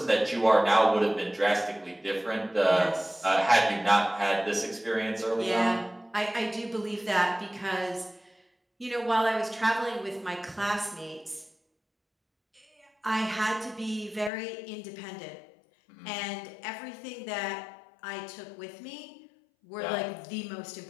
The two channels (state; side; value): drops out; right; at 14.3 s